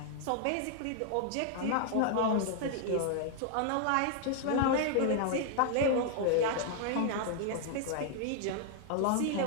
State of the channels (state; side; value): different; both; correlation 0.00